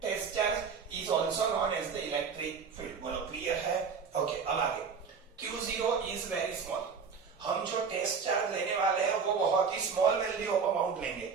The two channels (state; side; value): quieter; left; 5.8 dB